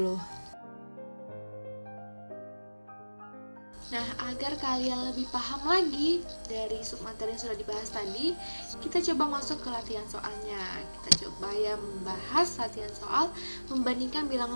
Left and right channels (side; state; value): both; inverted; correlation -1.00